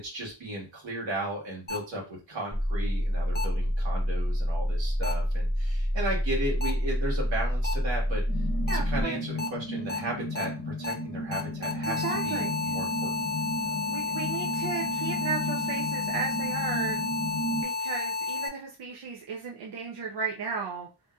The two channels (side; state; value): both; normal; correlation 0.38